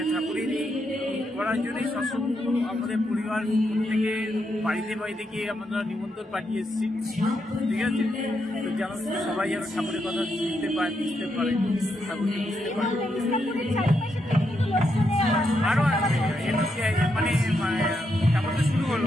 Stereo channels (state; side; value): normal; both; correlation 0.81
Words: ঠাকুরের করার জন্যই সৎসঙ্গ আমাদের পরিবার থেকে বাড়িতে গিয়ে আমরা নিমন্ত্রণ পাঠিয়ে এসেছি। ঠিক আছে, তো যেন সবাই যেন ঠাকুরের কথা বুঝতে পারে, ঠাকুরকে বুঝতে পারে। আরো মানে ঠাকুর তো শুরু